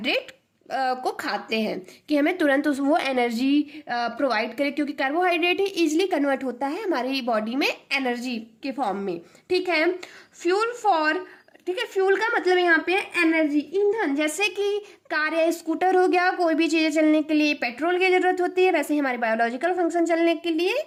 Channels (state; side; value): identical; both; correlation 1.00